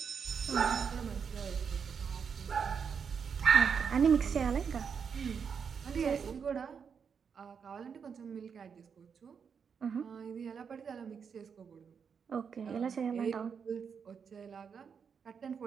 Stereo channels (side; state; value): left; quieter; 6.6 dB